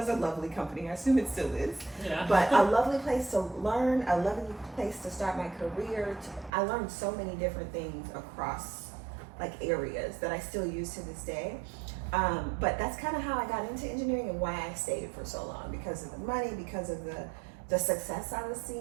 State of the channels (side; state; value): left; drops out; at 6.5 s